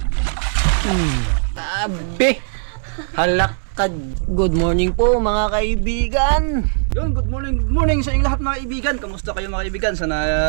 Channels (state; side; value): silent; left; digital silence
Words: Abe. Halakad. Good morning po mga kaibigan. Yun, good morning sa inyong lahat mga kaibigan. Kamusta kayo mga kaibigan? Sana